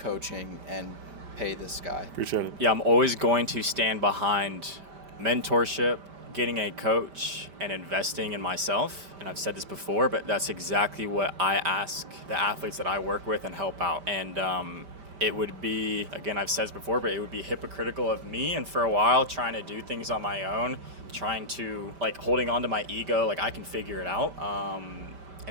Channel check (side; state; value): left; late; 5.1 ms